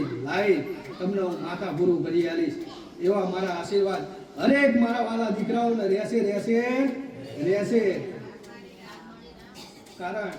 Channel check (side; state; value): both; identical; correlation 1.00